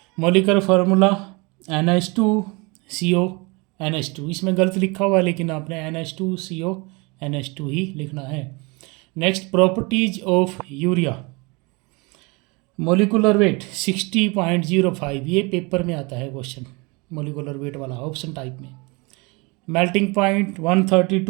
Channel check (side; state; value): left; quieter; 27.8 dB